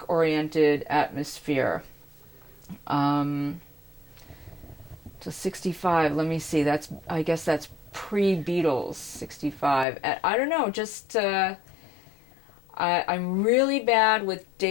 atmosphere. To 65, let me see, I guess that's pre-Beatles, 65. I don't know, just I'm really bad with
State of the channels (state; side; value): drops out; right; at 9.9 s